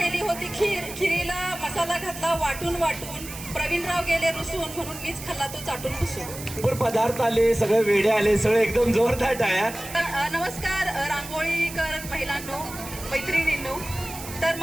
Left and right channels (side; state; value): right; noise; hiss, 12 dB below the sound